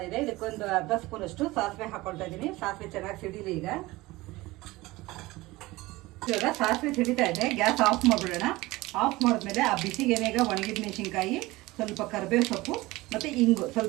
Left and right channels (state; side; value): quieter; left; 20.1 dB